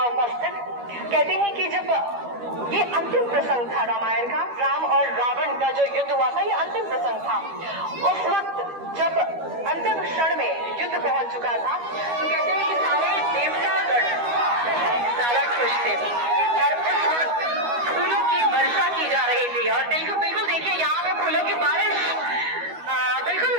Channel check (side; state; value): left; late; 12 ms